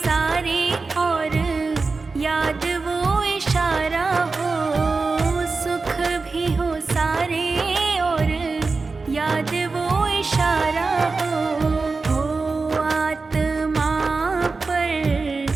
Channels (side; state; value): left; quieter; 4.1 dB